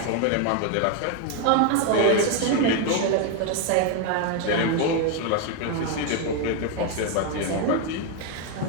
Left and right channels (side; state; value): both; different; correlation 0.01